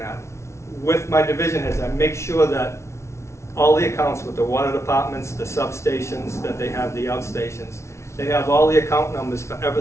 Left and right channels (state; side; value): late; right; 0.13 ms